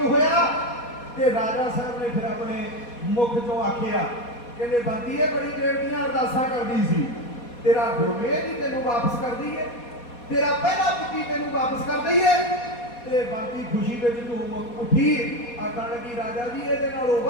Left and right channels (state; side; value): late; right; 4.2 ms